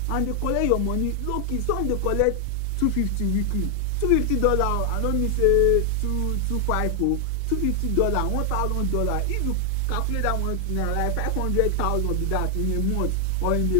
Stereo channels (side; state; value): both; different; correlation 0.00